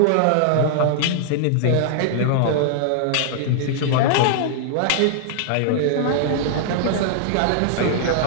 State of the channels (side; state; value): both; different; correlation -0.01